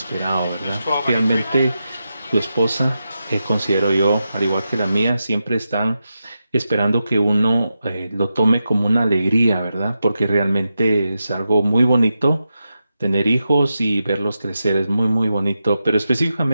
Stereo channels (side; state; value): both; inverted; correlation -0.89